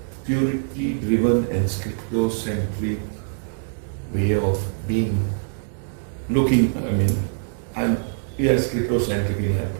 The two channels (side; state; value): left; silent; digital silence